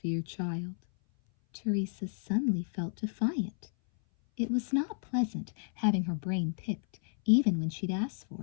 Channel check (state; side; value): silent; right; 56 dB below the other